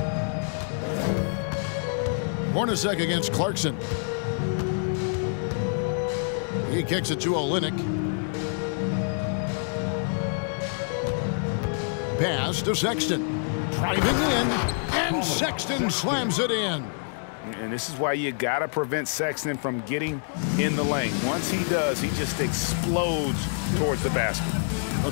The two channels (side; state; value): right; silent; 60 dB below the other